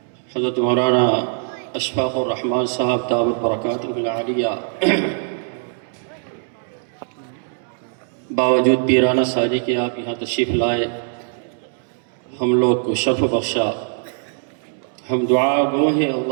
حضرت مولانا اشفاق الرحمان صاحب دامت برکاتہ العالیہ، باوجود پیرانہ ساجی کے آپ یہاں تشریف لائے، ہم لوگ کو شرف بخشا۔ ہم دعا گو ہیں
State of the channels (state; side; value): silent; left; 65 dB below the other